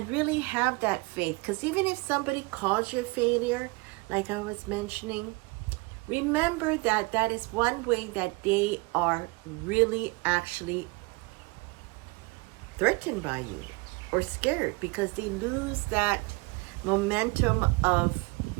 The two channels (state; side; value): quieter; left; 26.2 dB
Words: really have that faith. Because even if somebody calls you a failure, like I was mentioning, remember that that is one way that they are really actually threatened by you or scared, because they lose that momentum of